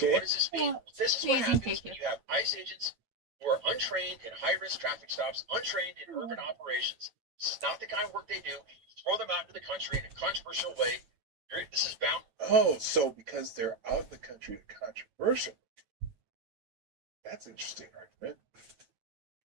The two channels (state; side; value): late; left; 9.1 ms